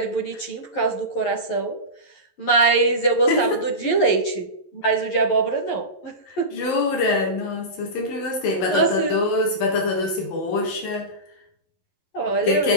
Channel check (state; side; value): late; right; 11 ms